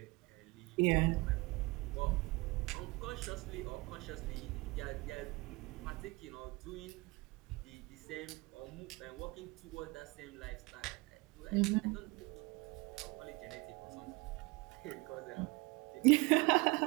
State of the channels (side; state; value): left; quieter; 24.3 dB